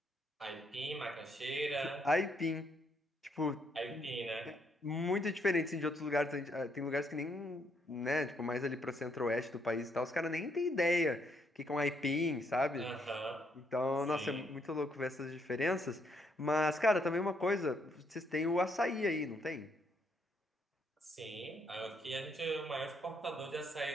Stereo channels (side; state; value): both; normal; correlation 0.73